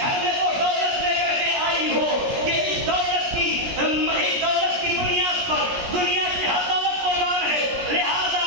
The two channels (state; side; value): late; left; 17 ms